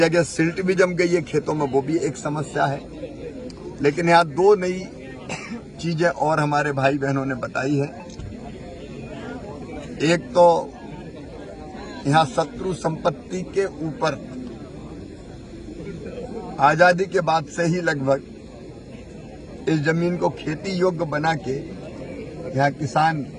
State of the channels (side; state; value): both; identical; correlation 1.00